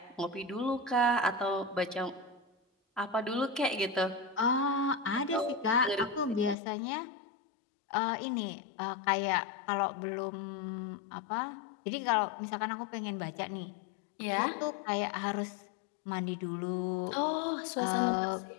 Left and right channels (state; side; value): drops out; right; at 6.6 s